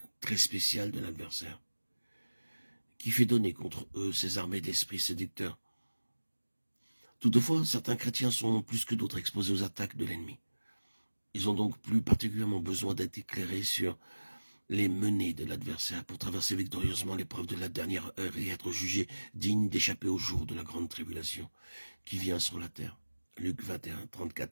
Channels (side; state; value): both; inverted; correlation -1.00